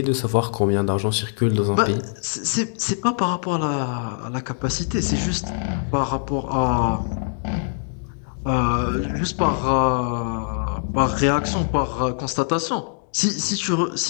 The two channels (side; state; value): right; silent; digital silence